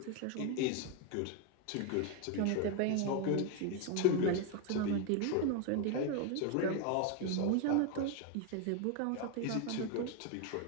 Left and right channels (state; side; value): different; both; correlation 0.01